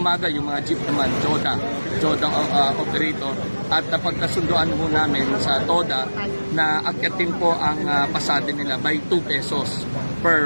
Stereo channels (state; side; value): inverted; both; correlation -1.00